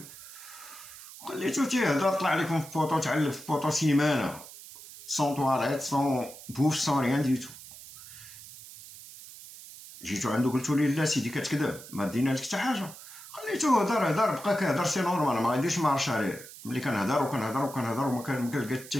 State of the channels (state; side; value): noise; right; hiss, 16 dB below the sound